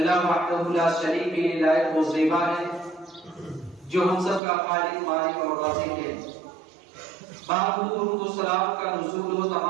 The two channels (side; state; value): left; drops out; at 4.4 s